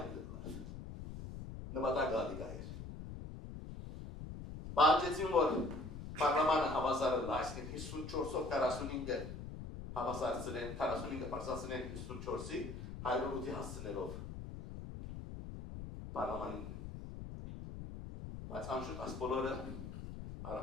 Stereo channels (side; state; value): left; noise; rumble, 9 dB below the sound